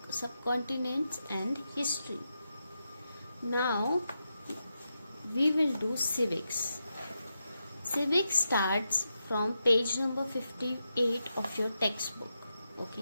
and history. Now we will do civics. Civics starts from page number 58 of your textbook.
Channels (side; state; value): both; inverted; correlation -0.87